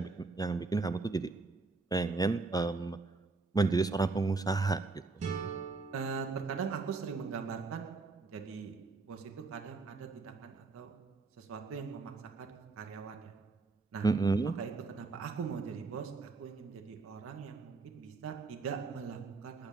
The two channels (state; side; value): quieter; left; 3.9 dB